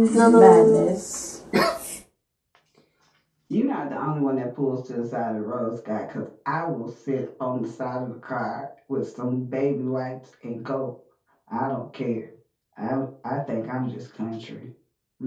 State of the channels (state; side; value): identical; both; correlation 1.00